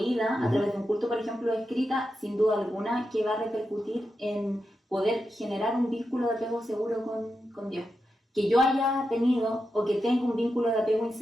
a través de un culto, por ejemplo, escrita, sin duda alguna, que va a repercutir en poder generar un vínculo de apego seguro con Dios. Que yo haya tenido o que tenga un vínculo de apego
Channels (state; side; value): normal; both; correlation 0.88